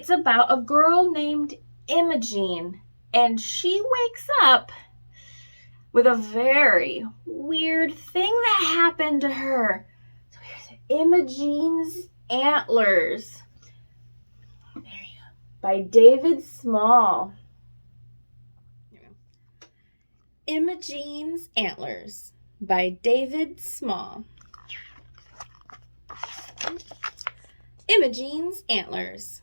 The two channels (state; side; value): inverted; both; correlation -1.00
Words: about a girl named Imogene, and she wakes up with a very weird thing that happened to her. So here's Imogene's Antlers. There you go. By David Small. Imogene's Antlers by David Small. Imogene's Antlers.